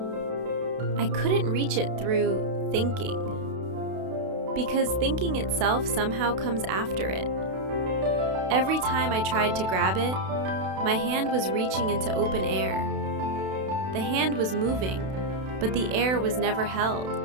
I couldn't reach it through thinking, because thinking itself somehow comes after it. Every time I tried to grab it, my hand was reaching into open air. The hand was moving, but the air was never held.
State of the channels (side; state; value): left; late; 32 ms